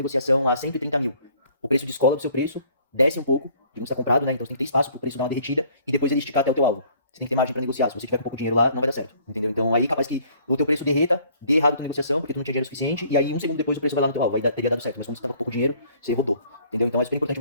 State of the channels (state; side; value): inverted; both; correlation -0.58